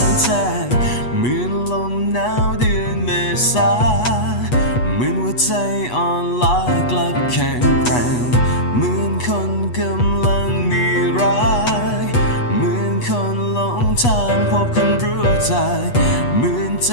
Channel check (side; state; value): right; late; 8.2 ms